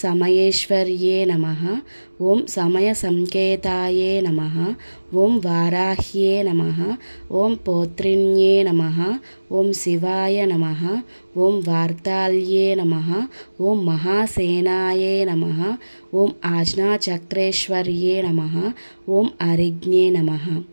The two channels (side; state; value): both; inverted; correlation -1.00